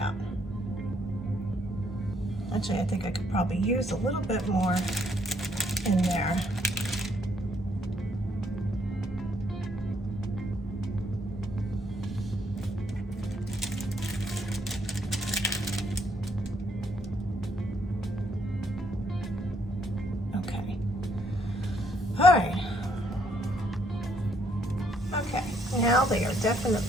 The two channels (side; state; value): both; normal; correlation 0.70